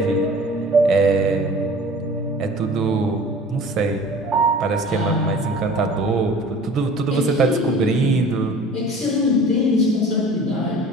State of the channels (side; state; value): both; normal; correlation 0.44